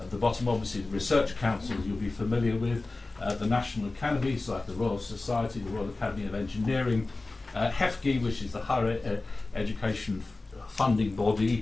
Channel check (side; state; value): right; quieter; 3.3 dB